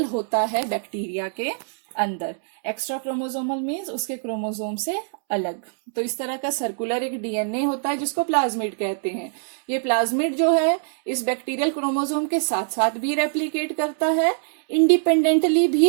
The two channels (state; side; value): silent; left; 63 dB below the other